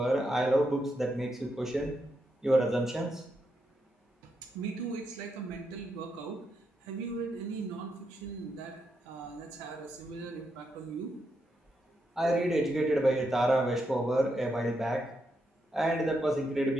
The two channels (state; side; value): normal; both; correlation 0.82